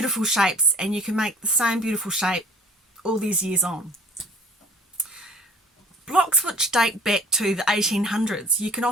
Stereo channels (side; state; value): both; normal; correlation 0.48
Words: shapes, and you can make the same beautiful shape all these years on. Blocks which date back to the 1800s you can